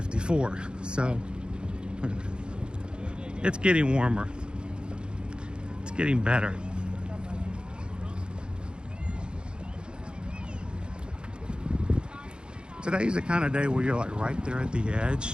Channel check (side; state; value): left; late; 0.051 ms